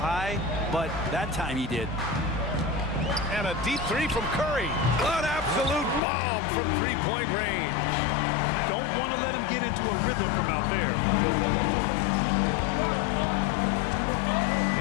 but that time he did. And a deep 3 from Curry. An absolute bomb from 3-point range. Don't want to let him get into a rhythm from out there.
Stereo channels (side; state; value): right; drops out; at 6.0 s